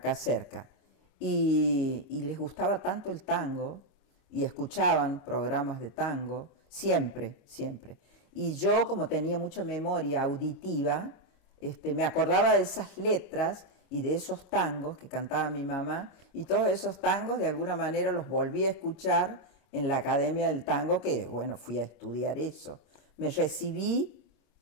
cerca, y les gustaba tanto el tango, y escuchaban programas de tango, siempre, siempre. Y yo, como tenía mucha memoria auditiva, me acordaba de esas letras y de esos tangos que cantaba mi mamá, y todos esos tangos de alguna manera los volví a escuchar en la Academia del Tango, que bueno, fui a estudiar eso. Me recibí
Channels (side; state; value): right; late; 25 ms